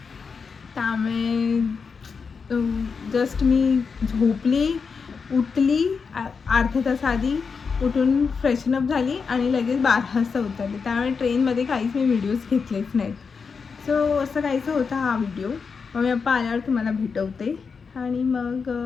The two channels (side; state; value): right; quieter; 5.4 dB